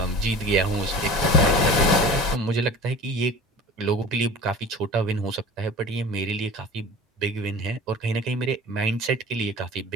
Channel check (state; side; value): normal; both; correlation 0.38